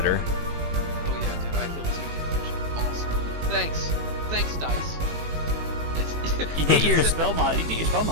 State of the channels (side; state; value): left; late; 18 ms